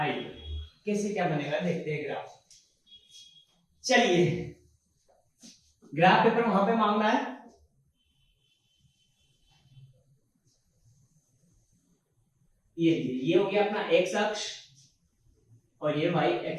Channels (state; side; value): identical; both; correlation 1.00